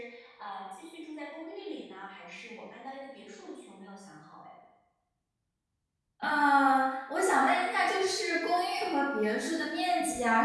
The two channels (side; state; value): both; identical; correlation 1.00